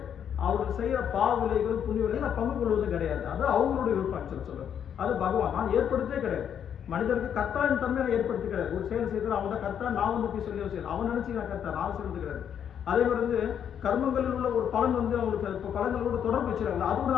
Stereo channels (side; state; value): right; quieter; 8.7 dB